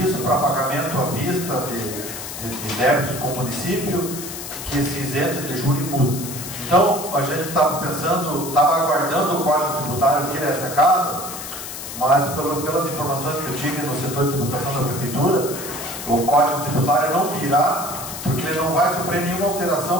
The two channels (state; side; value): noise; left; hiss, 9 dB below the sound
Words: para pagamento à vista de débitos com o município, que se isente de juros e multa. Então, a gente estava pensando, estava aguardando o Código Tributário vir a essa casa, mas pelas informações que eu tive no setor de tributação da Prefeitura, o Código Tributário não virá, porque ele não vai sofrer nenhuma alteração